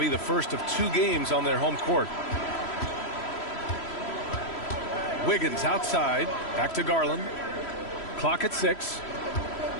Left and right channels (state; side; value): late; right; 3.1 ms